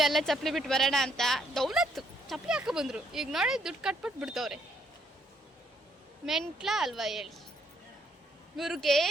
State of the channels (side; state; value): both; normal; correlation 0.71